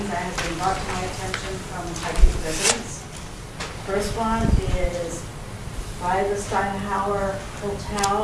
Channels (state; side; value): identical; both; correlation 1.00